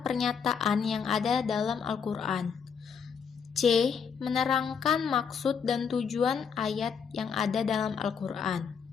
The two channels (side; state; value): right; quieter; 6.5 dB